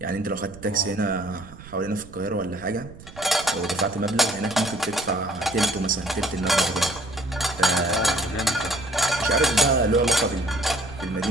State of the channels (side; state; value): right; noise; rumble, 18 dB below the sound